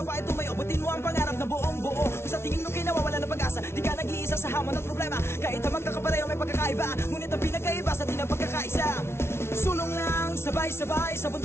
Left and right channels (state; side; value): late; right; 0.12 ms